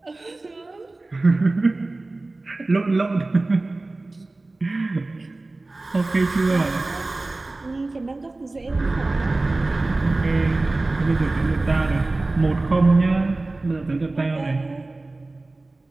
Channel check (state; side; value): quieter; left; 3.1 dB